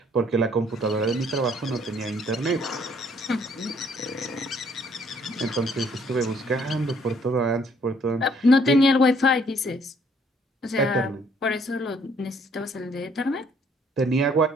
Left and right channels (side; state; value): both; normal; correlation 0.63